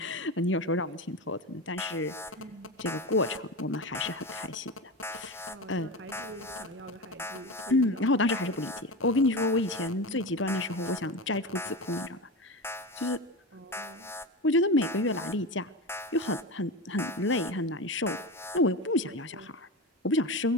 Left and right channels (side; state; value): both; normal; correlation 0.23